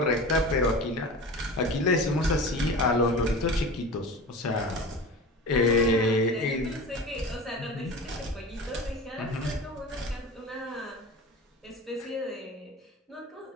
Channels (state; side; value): normal; both; correlation 0.33